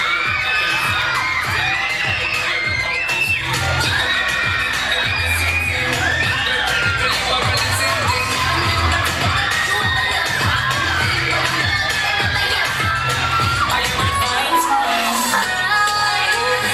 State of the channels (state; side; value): noise; left; hum, 23 dB below the sound